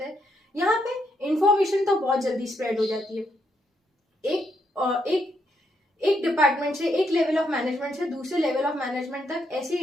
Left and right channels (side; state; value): both; normal; correlation 0.77